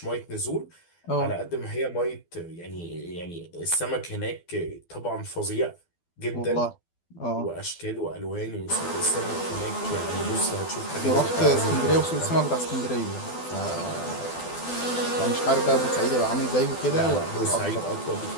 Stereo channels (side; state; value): right; late; 12 ms